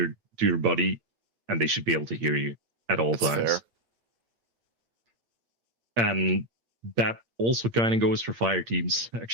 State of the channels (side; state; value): left; late; 8.7 ms